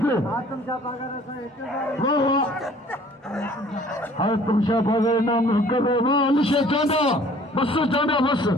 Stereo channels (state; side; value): normal; both; correlation 0.53